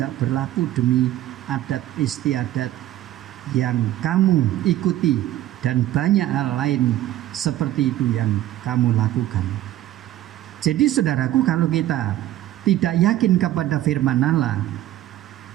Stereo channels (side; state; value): left; quieter; 13.8 dB